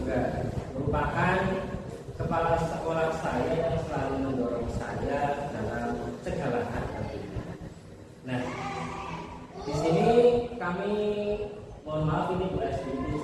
merupakan kepala sekolah saya yang selalu mendorong saya dalam segala hal. Nah, di sini kami mohon maaf ini Bu SD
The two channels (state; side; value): identical; both; correlation 1.00